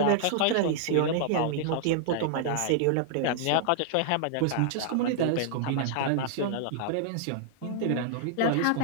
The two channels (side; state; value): both; different; correlation -0.01